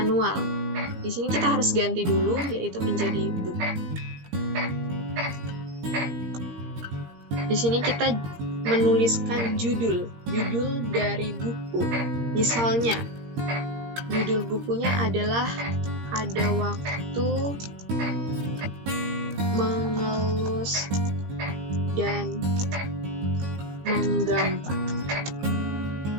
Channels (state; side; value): late; left; 17 ms